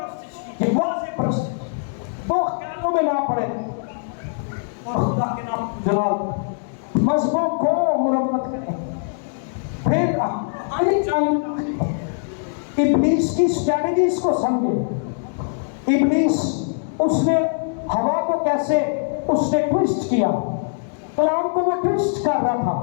واضح پرست دو خیالوں میں نہ پڑے اور خدا کے نام جلال مذہبوں کو مرمت کریں. پھر آنے چاہیے ابلیس کی اسٹریٹجیز کو سمجھے. ابلیس اس نے ہوا کو کیسے اس نے ٹویسٹ کیا, کلام کو وہ ٹویسٹ کر رہا تھا.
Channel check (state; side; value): silent; right; digital silence